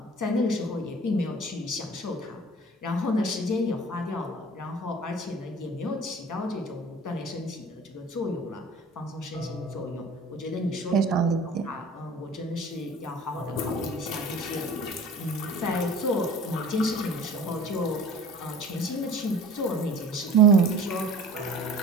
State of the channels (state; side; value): normal; both; correlation 0.44